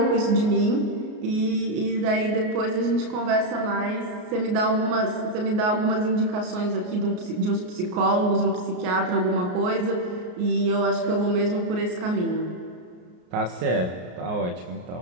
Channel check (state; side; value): late; left; 33 ms